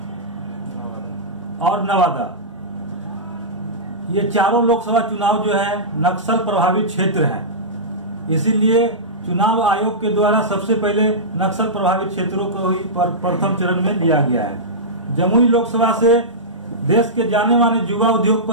और नवादा। ये चारों लोकसभा चुनाव जो है नक्सल प्रभावित क्षेत्र हैं। इसीलिए चुनाव आयोग के द्वारा सबसे पहले नक्सल प्रभावित क्षेत्रों को ही प्रथम चरण में लिया गया है। जमुई लोकसभा से देश के जाने माने युवा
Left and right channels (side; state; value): both; normal; correlation -0.15